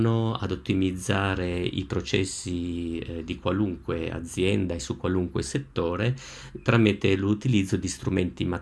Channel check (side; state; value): both; identical; correlation 1.00